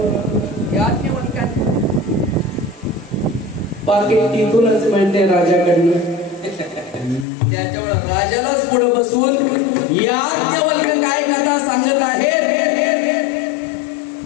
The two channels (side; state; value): right; drops out; at 7.2 s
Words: पाकिट तिथूनच मिळते राजाकडनं. त्याच्यामुळे राजालाच पुढे बसून याज्ञवल्क्य काय कथा सांगत आहे,